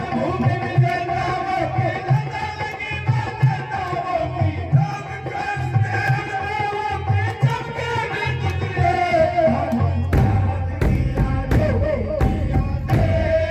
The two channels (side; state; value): both; identical; correlation 1.00